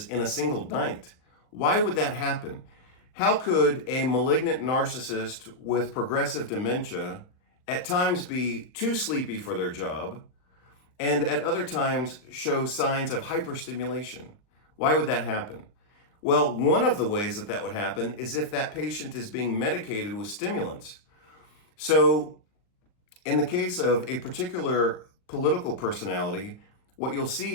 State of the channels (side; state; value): right; late; 39 ms